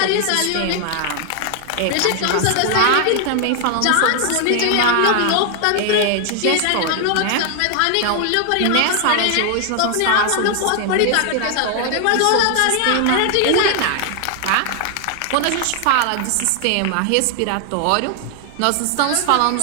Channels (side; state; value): both; different; correlation 0.00